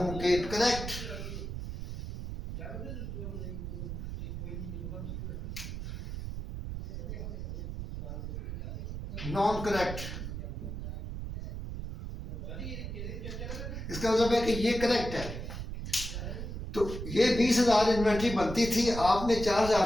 कि करेक्ट नॉन करेक्ट, इसका मतलब है कि ये करेक्ट है। तो ये 20,000 इन्वेंट्री बनती थी, आपने 4,000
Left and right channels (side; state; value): right; noise; rumble, 6 dB below the sound